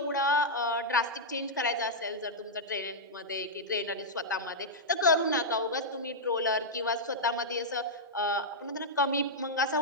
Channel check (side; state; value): both; normal; correlation -0.07